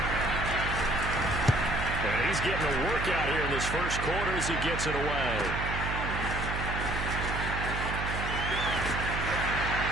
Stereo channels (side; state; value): right; noise; hum, 4 dB below the sound